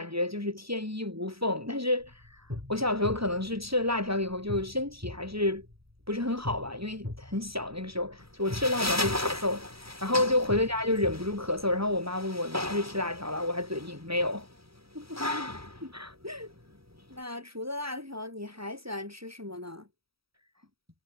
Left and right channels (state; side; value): late; left; 0.76 ms